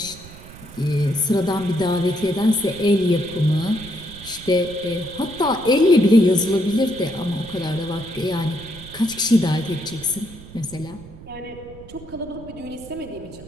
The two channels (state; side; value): noise; right; rumble, 17 dB below the sound